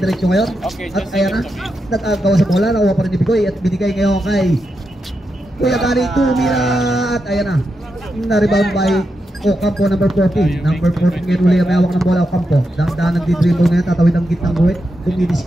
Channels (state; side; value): normal; both; correlation 0.86